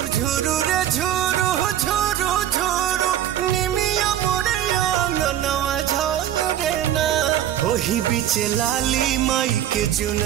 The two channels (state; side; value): quieter; left; 11.3 dB